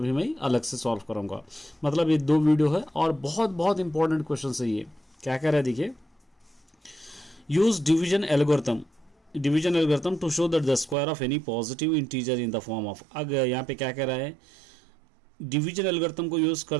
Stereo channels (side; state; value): left; drops out; at 11.0 s